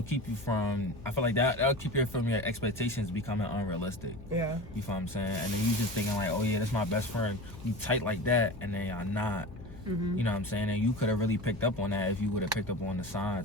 from, I feel like that'll keep you from your expectations becoming unrealistic. Yeah. You feel what I'm saying? And then you just thinking like, oh yeah, that's my best friend. You tight like that, and then y'all not. You know what I'm saying? And you could have really picked up on that if you would have picked up on the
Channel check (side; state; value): left; noise; hum, 17 dB below the sound